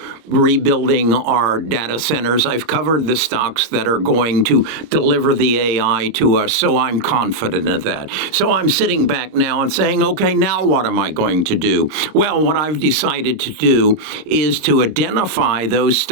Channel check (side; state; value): left; late; 26 ms